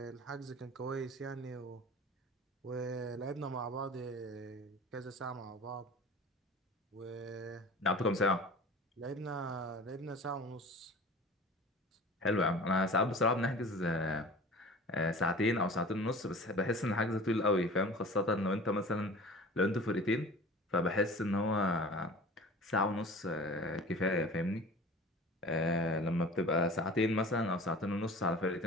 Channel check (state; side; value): normal; both; correlation 0.40